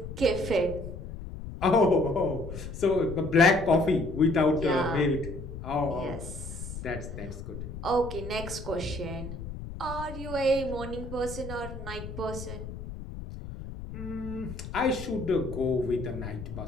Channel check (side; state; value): left; noise; rumble, 9 dB below the sound